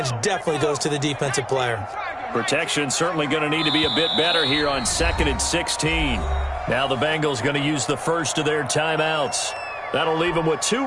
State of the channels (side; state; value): both; identical; correlation 1.00